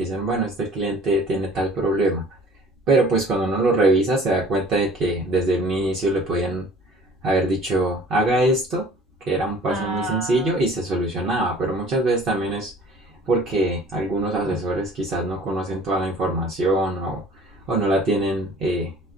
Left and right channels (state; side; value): normal; both; correlation 0.50